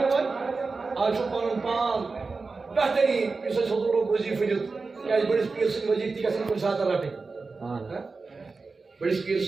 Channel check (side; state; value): left; quieter; 4.1 dB